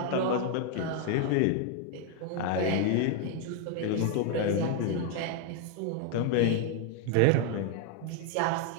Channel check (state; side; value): different; both; correlation 0.01